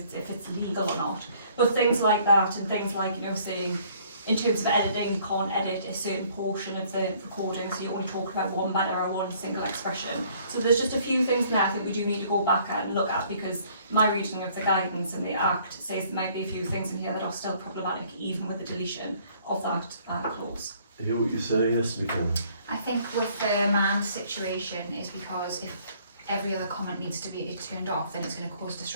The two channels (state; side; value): inverted; both; correlation -0.60